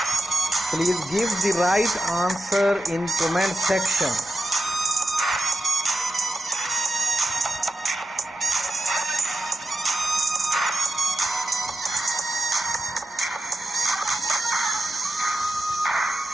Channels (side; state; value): both; normal; correlation 0.91